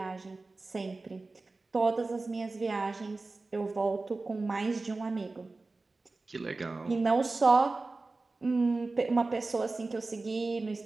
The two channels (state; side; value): quieter; left; 3.5 dB